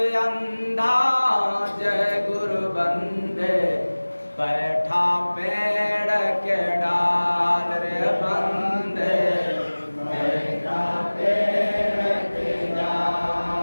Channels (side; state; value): both; inverted; correlation -1.00